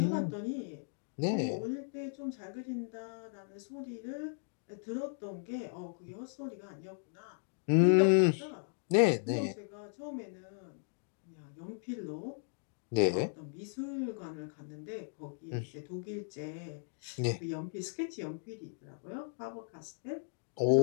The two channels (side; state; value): right; silent; digital silence